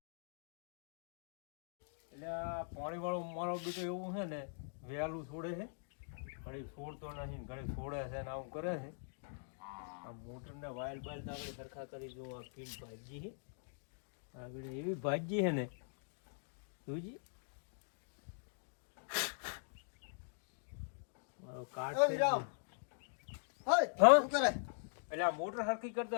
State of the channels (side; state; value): right; silent; digital silence